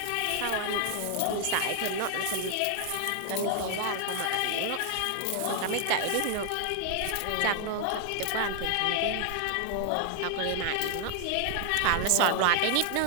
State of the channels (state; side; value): different; both; correlation 0.00